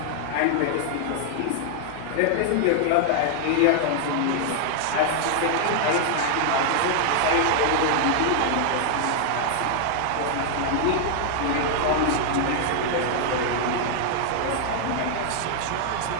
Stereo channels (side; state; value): both; different; correlation -0.01